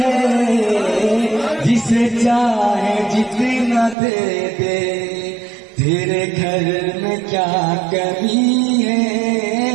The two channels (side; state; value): left; drops out; at 4.0 s